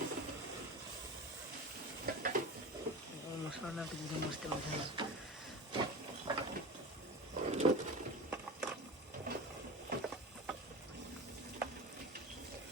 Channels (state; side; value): normal; both; correlation 0.29